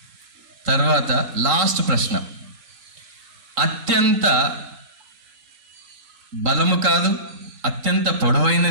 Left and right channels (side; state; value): left; late; 3.7 ms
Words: తర్వాత లాస్ట్ ప్రశ్న, అత్యంత బలము కాదు, అత్యంత